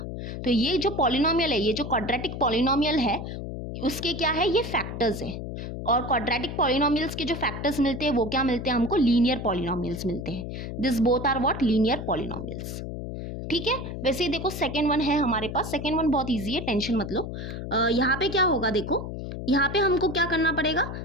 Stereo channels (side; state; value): left; noise; hum, 7 dB below the sound